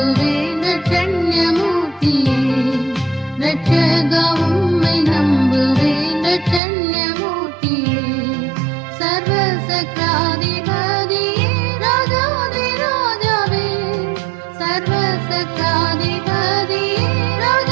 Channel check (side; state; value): left; drops out; at 6.6 s